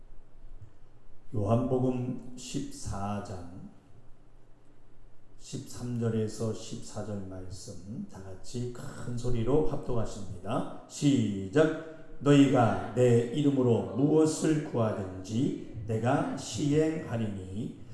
요한복음 14장 13절에서 14절 말씀 다 같이 큰 소리로 합독하십니다. 시작. 너희가 내 이름으로 무엇을 구하든지 내가 시행하리니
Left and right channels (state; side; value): identical; both; correlation 1.00